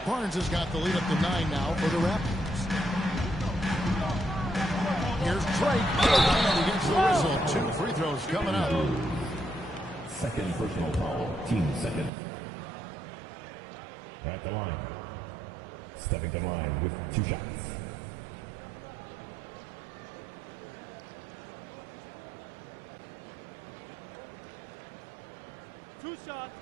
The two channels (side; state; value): left; drops out; at 12.1 s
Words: Barnes has got the lead up to 9 now for the Raptors. Here's Drake. And he gets the whistle. 2 free throws coming up. Second personal foul. Team second. At the line. Stepping to the line with 2 shots. Two shots.